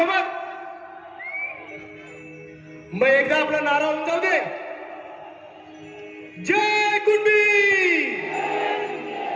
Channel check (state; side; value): identical; both; correlation 1.00